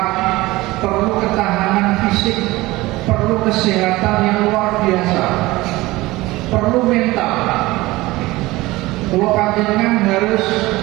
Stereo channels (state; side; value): quieter; left; 19.6 dB